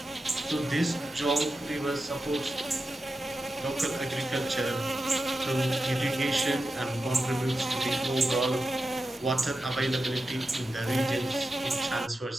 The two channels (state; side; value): normal; both; correlation 0.91